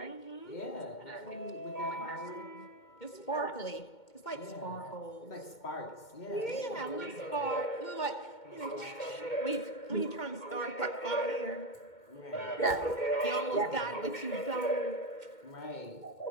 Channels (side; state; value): right; late; 2.2 ms